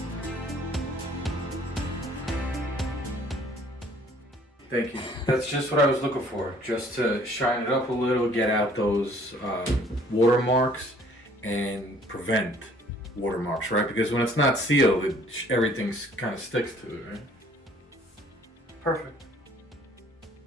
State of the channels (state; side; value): normal; both; correlation 0.58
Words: Thank you. That's just what I was looking for. Just to shine it up a little, get out those watermarks and prevent watermarks, right? Because when it's not sealed, everything's kind of sticks to it, right? Perfect.